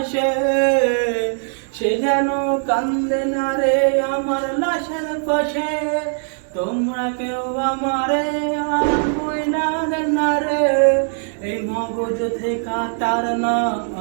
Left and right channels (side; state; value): left; silent; 66 dB below the other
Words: সে যেন কান্দে না রে আমার লাশের পাশে। তোমরা কেউ আমারে আর বইলা দেন না রে, এই মগজ থেকে তার নাম